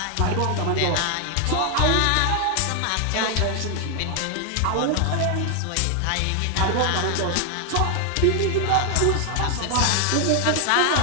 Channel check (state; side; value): different; both; correlation 0.00